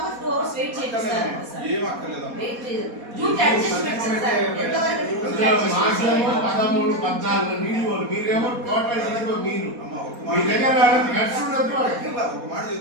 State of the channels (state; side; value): late; left; 4.2 ms